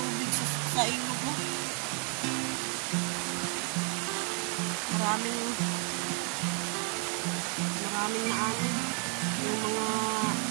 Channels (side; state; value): left; quieter; 39.6 dB